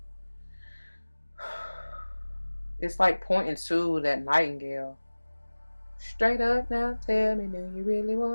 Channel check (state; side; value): inverted; both; correlation -1.00